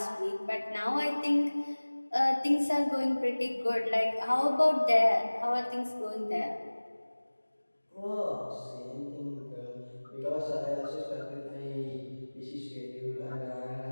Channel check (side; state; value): both; inverted; correlation -1.00